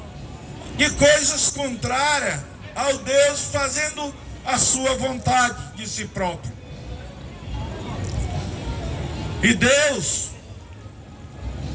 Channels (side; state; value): both; identical; correlation 1.00